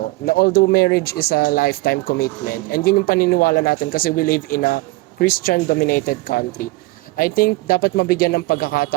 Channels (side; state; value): left; quieter; 21.2 dB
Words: Na although marriage is a lifetime commitment, and yun yung paniniwala natin kasi we live in a Christian-dominated country, I think dapat mabigyan ng